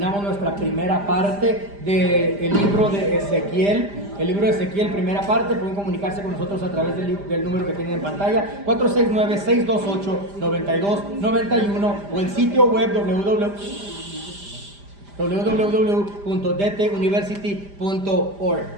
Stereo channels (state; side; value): late; left; 5.0 ms